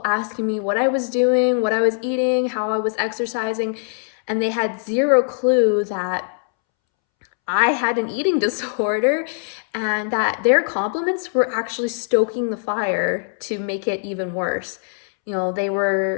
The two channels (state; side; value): silent; right; 65 dB below the other